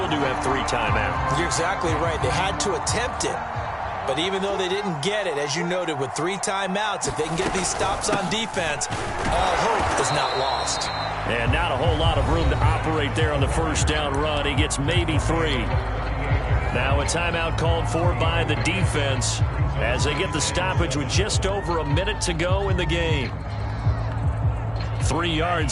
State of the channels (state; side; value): identical; both; correlation 1.00